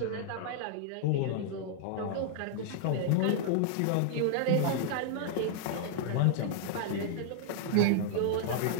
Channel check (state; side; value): different; both; correlation -0.01